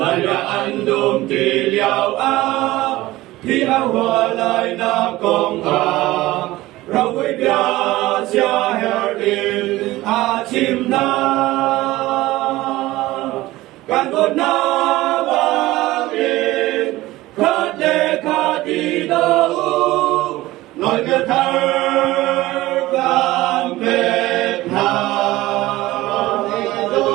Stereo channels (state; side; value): quieter; left; 17.8 dB